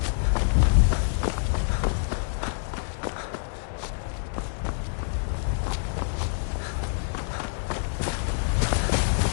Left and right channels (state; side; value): silent; right; digital silence